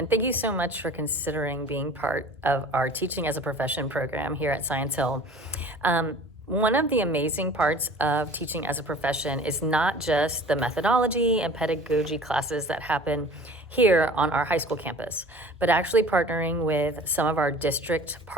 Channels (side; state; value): both; normal; correlation 0.45